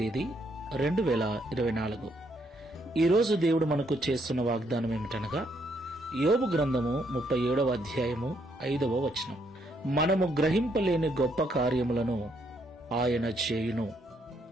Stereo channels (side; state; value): both; normal; correlation 0.73